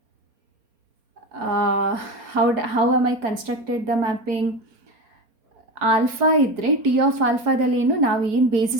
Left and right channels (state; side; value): late; left; 4.3 ms